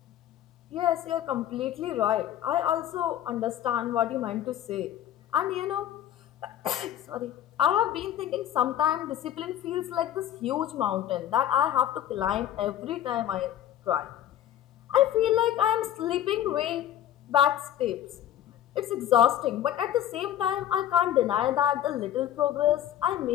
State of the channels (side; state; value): right; quieter; 11.4 dB